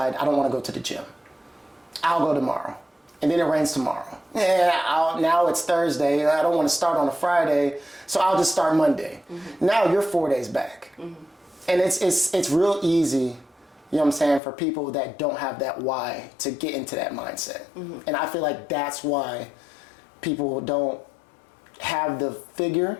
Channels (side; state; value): right; drops out; at 14.4 s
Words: I don't want to go to the gym. I'll go tomorrow. And then it rains tomorrow. Yeah, now it's Thursday. I don't want to start on a Friday, so I'll just start Monday. Now you're 4 days back. And it's real easy, you know what I'm saying, for people that don't have that why to get into that mindset. And I feel like that's why people don't have the